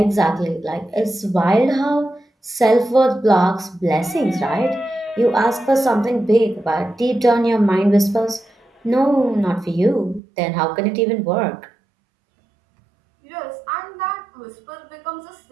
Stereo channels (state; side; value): drops out; left; at 10.2 s